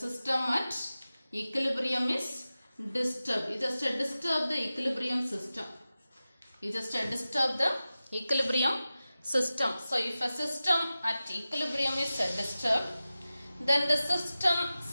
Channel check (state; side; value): inverted; both; correlation -0.95